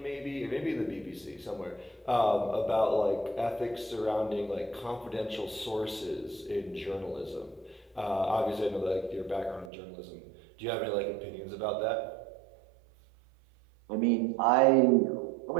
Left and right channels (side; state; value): left; drops out; at 9.7 s